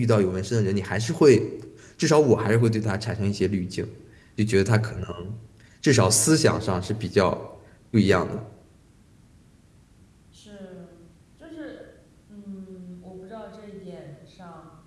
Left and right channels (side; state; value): both; identical; correlation 1.00